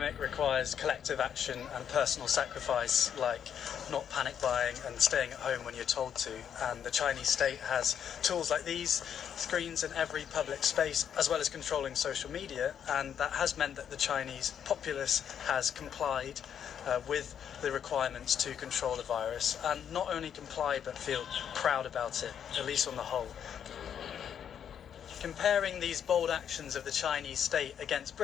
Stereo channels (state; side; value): quieter; right; 8.6 dB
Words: requires collective action and personal sacrifice, like not panic buying and staying at home when you're told to. And the Chinese state has tools like these, screens in every public space, as well as controlling social media. And that has meant that the Chinese populace has complied with the requirements to control the virus, and not only comply but feel proud about it, at least on the whole. Comparing these bold actions of the Chinese state against